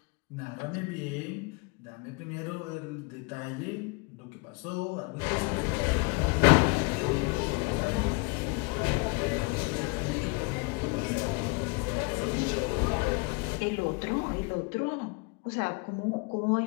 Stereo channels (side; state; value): right; quieter; 30.1 dB